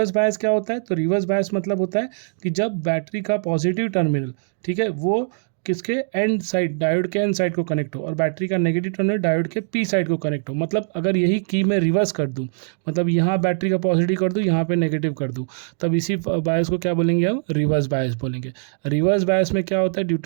बायस क्या होता है, तो रिवर्स बायस मतलब होता है कि जब बैटरी का पॉजिटिव टर्मिनल, ठीक है, वो किसके, एंड साइड, डायोड के एंड साइड को कनेक्ट हो, और बैटरी का नेगेटिव टर्मिनल डायोड के P साइड को कनेक्ट हो। मतलब अगर यही की मैं रिवर्स कर दूं, मतलब यहाँ बैटरी का पॉजिटिव कर दूं, यहाँ पे नेगेटिव कर दूं, तब इसी बायस को क्या बोलेंगे हम, रिवर्स बायस बोलेंगे। रिवर्स बायस में क्या होता है, ड्यू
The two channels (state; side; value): silent; left; digital silence